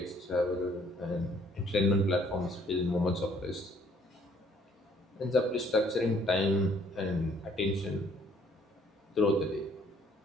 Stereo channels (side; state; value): both; normal; correlation 0.62